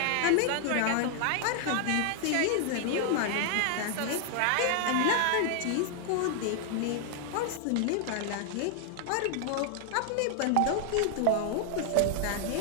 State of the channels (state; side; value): different; both; correlation 0.00